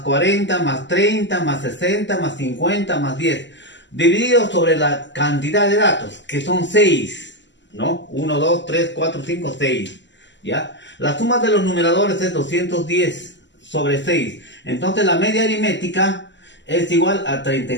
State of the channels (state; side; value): late; right; 0.53 ms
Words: 40 más 30 más 60 más 50 más 10, dividido sobre la cantidad de datos, que son 6, ¿no? 1, 2, 3, 4, 5, 6, ¿ya? La suma de los numeradores es 210 sobre 6. Entonces la media aritmética es igual a